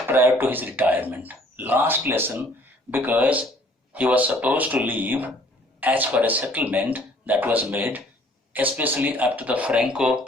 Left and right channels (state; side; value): normal; both; correlation 0.58